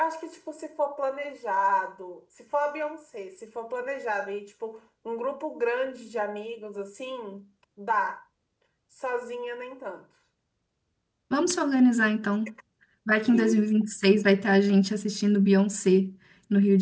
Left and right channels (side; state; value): both; identical; correlation 1.00